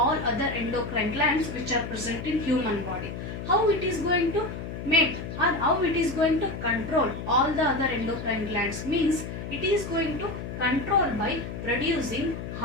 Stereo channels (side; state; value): left; noise; hum, 7 dB below the sound